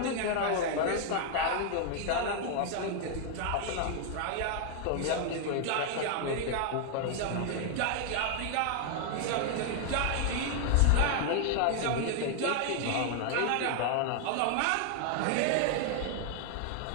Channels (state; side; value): different; both; correlation 0.00